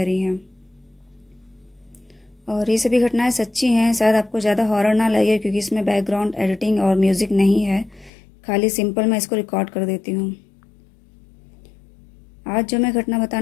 हैं। और ये सभी घटनाएं सच्ची हैं। शायद आपको ज़्यादा हॉरर ना लगे क्योंकि इसमें बैकग्राउंड एडिटिंग और म्यूज़िक नहीं है, खाली सिंपल मैं इसको रिकॉर्ड कर देती हूँ। आज जो मैं घटना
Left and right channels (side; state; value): right; drops out; at 8.1 s